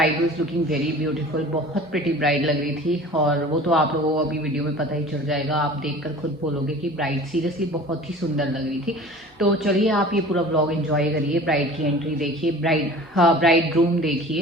was looking very beautiful, बहुत प्रिटी ब्राइड लग रही थी। और वो तो आप लोगों को अभी वीडियो में पता ही चल जाएगा, आप देखकर खुद बोलोगे कि ब्राइड सीरियसली बहुत ही सुंदर लग रही थी। तो चलिए आप ये पूरा व्लॉग एंजॉय करिए, ब्राइड की एंट्री देखिए, ब्राइड ग्रूम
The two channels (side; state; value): both; normal; correlation 0.42